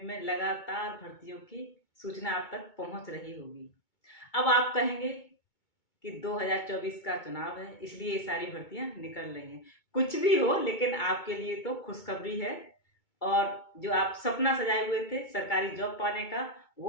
में लगातार भर्तियों की सूचना आप तक पहुंच रही होगी। अब आप कहेंगे कि 2024 का चुनाव है, इसलिए ये सारी भर्तियां निकल रही हैं। कुछ भी हो, लेकिन आपके लिए तो खुशखबरी है। और जो आप सपना सजाए हुए थे सरकारी जॉब पाने का,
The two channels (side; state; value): right; late; 2.3 ms